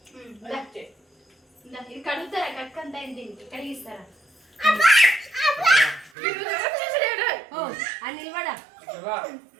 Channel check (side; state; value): left; drops out; at 6.1 s